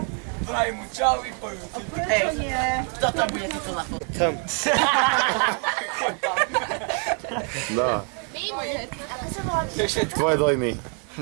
Vraj mu čau i pojú. Hej, kto tam bude tuto na fotu? Tam. Choď tam. No. Tvoje dojmy.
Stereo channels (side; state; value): left; quieter; 36.4 dB